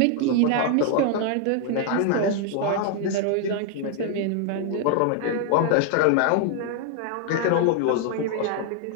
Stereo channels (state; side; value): different; both; correlation 0.00